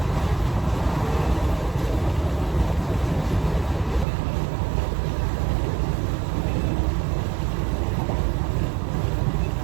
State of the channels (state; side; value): drops out; left; at 4.0 s